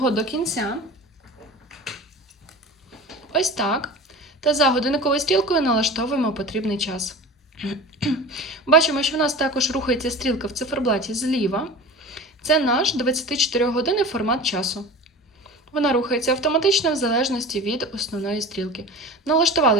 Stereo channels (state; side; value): normal; both; correlation 0.35